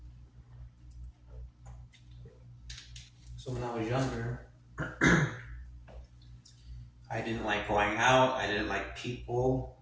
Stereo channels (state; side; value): identical; both; correlation 1.00